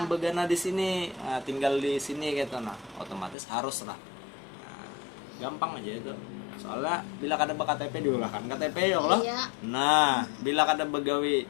begana di sini, tinggal di sini gitu. Nah, otomatis harus lah. Nah, gampang aja itu. Soalnya bila kada KTP diulahkan KTP ya Allah. Iya. Nah, bila kada begawi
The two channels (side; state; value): right; drops out; at 3.4 s